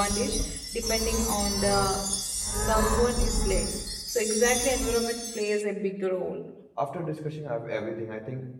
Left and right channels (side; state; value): both; identical; correlation 1.00